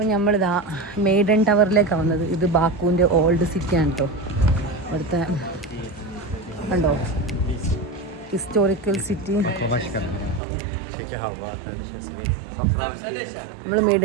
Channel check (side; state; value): left; drops out; at 10.4 s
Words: നമ്മളിതാ മെയ്ഡൻ ടവറിലേക്കാണ് വന്നത്. ഇത് ബാക്കുവിൻ്റെ ഓൾഡ് സിറ്റിയാണ് കേട്ടോ. ഇവിടുത്തെ കണ്ടോ ഹിസ്റ്റോറിക്കൽ സിറ്റി. നമ്മൾ